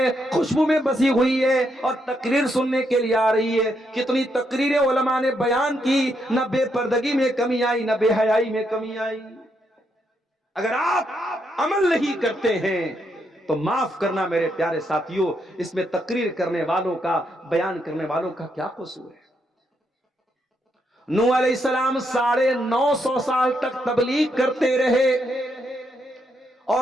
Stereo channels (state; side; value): normal; both; correlation 0.78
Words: خوشبو میں بسی ہوئی ہے, اور تقریر سننے کے لیے آ رہی ہے. کتنی تقریریں علماء نے بیان کی, نہ بے پردگی میں کمی آئی, نہ بے حیائی میں کمی آئی. اگر آپ عمل نہیں کرتے ہیں تو معاف کرنا میرے پیارے ساتھیوں, اس میں تقریر کرنے والوں کا, بیان کرنے والوں کا کیا قصور ہے؟ نوح علیہ السلام 950 سال تک تبلیغ کرتے رہے,